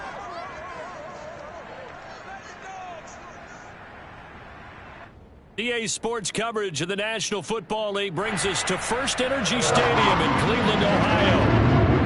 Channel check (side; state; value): both; identical; correlation 1.00